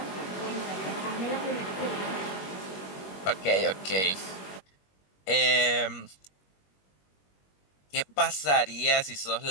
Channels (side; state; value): right; late; 21 ms